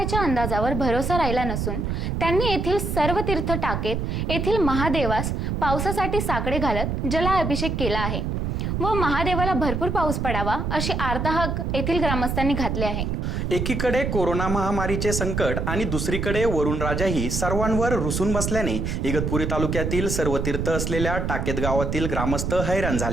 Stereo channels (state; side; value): noise; right; rumble, 1 dB below the sound